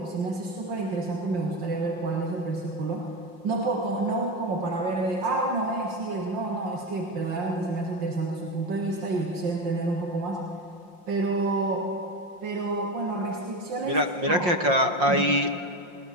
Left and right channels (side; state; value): left; late; 5.6 ms